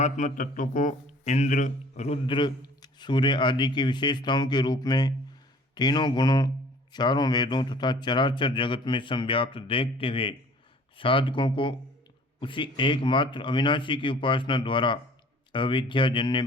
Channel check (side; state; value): both; normal; correlation 0.51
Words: तत्व को इंद्र, रुद्र, सूर्य आदि की विशेषताओं के रूप में तीनों गुणों, चारों वेदों तथा चराचर जगत में संव्याप्त देखते हुए साधकों को उसी एकमात्र अविनाशी की उपासना द्वारा अविद्याजन्य